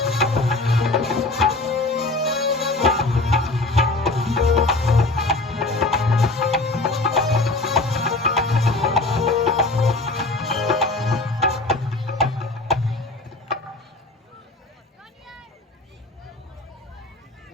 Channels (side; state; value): right; quieter; 3.1 dB